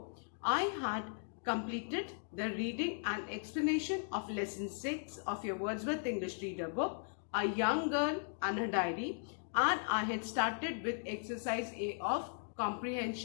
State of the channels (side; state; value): right; silent; digital silence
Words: I had completed the reading and explanation of lesson 6 of your Wordsworth English Reader book, A Young Girl and Her Diary, and I had started with exercise A of